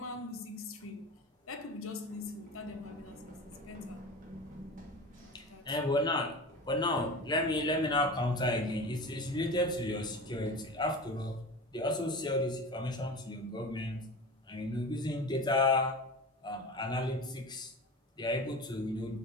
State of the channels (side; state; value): both; normal; correlation 0.32